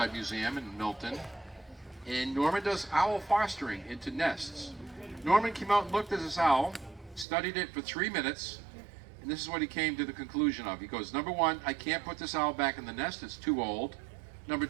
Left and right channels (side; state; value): left; drops out; at 7.2 s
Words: Museum in Milton. And Norman does owl fostering into nests. Norman came out and looked at this owl, studied it for 3 minutes, and this is what he came to the conclusion of. He goes, "Number one, I can't put this owl back in the nest. It's too old. Number